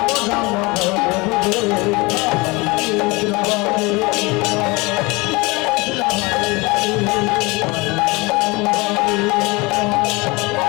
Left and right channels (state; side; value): quieter; right; 25.0 dB